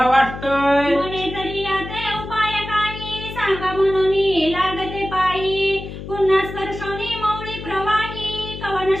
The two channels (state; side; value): noise; left; hum, 10 dB below the sound